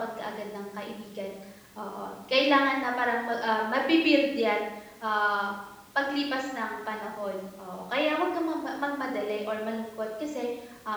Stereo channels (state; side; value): identical; both; correlation 1.00